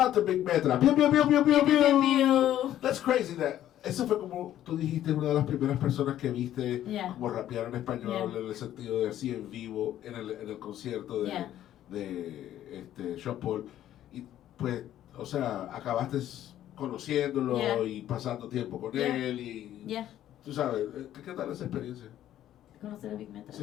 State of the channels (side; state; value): right; quieter; 12.1 dB